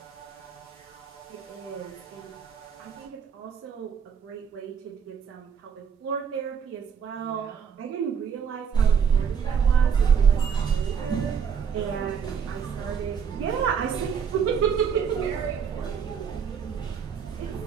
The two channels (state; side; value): quieter; left; 7.0 dB